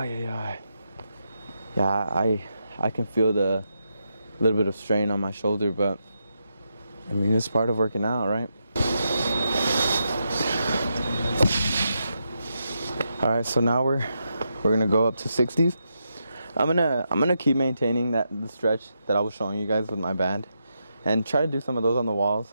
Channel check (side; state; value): both; inverted; correlation -0.84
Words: I can feel the little bit of strain on my shoulder, but I mean, it's part of working out, right? All right, so now we're gonna go up to 60s. I'm gonna keep maintaining the stretch that I was showing you guys with my band, and try to do some of those on the